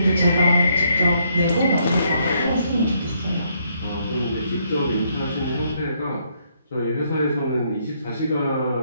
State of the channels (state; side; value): inverted; both; correlation -0.72